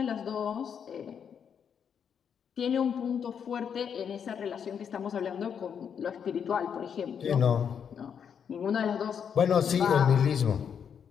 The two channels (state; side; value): quieter; right; 7.6 dB